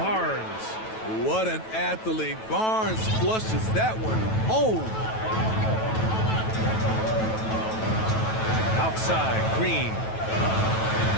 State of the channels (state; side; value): late; right; 9.2 ms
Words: What an athlete. Barnes flushes that one home. Outside, Green.